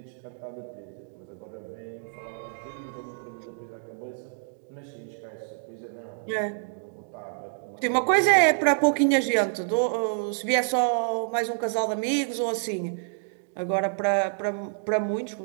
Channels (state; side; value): silent; left; digital silence